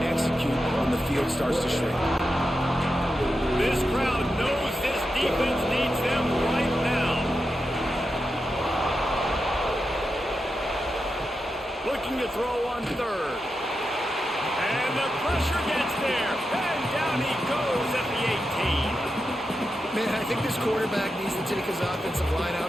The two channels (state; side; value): normal; both; correlation 0.88